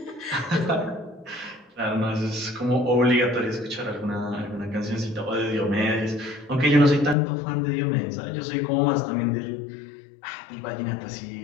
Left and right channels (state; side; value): drops out; right; at 7.2 s